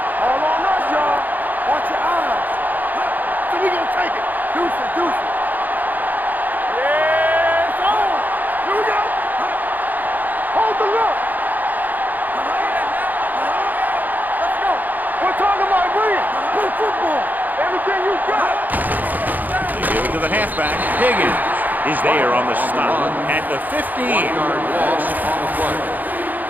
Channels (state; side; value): late; left; 0.084 ms